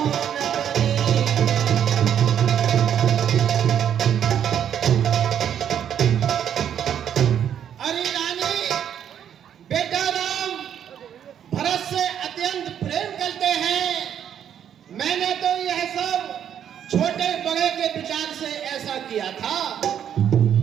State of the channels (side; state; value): left; quieter; 9.3 dB